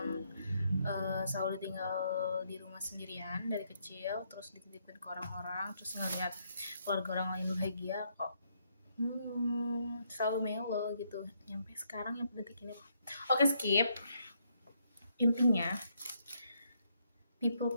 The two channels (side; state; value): both; inverted; correlation -0.74